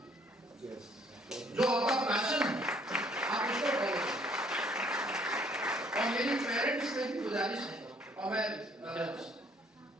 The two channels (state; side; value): normal; both; correlation 0.62